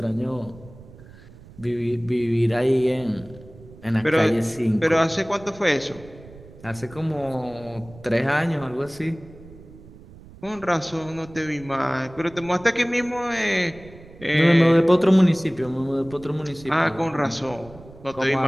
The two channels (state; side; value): noise; right; rumble, 20 dB below the sound